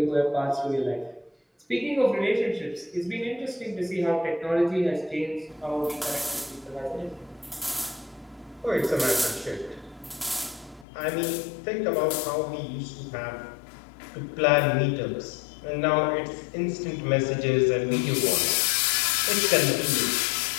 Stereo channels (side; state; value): right; drops out; at 10.9 s